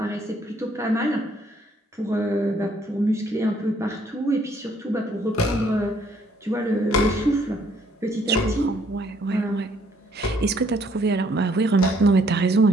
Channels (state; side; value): normal; both; correlation 0.65